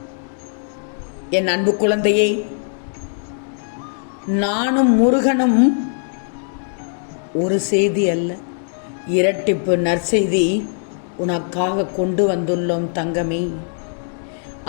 என் அன்பு குழந்தையை, நானும் முருகனும் ஒரு செய்தி அல்ல, இரட்டிப்பு நற்செய்தி உனக்காக கொண்டு வந்துள்ளோம் தங்கமே.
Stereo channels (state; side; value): silent; right; digital silence